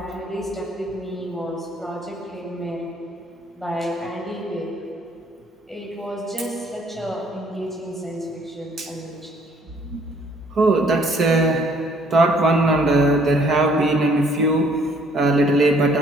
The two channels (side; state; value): both; normal; correlation 0.62